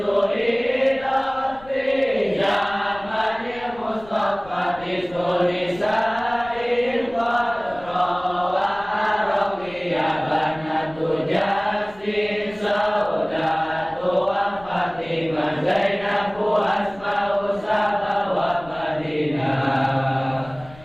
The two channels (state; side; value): noise; left; rumble, 22 dB below the sound